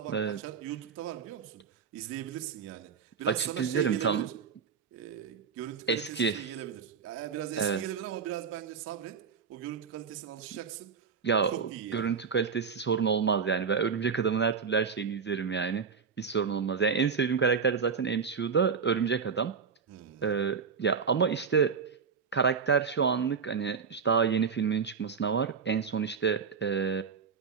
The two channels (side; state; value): left; quieter; 6.1 dB